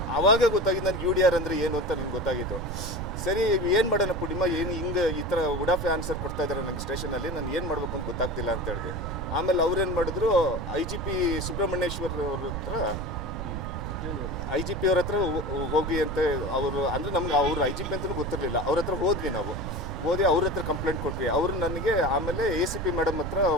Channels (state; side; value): noise; right; rumble, 5 dB below the sound